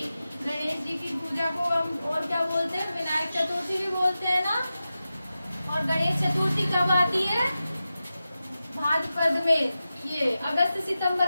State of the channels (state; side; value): inverted; both; correlation -0.93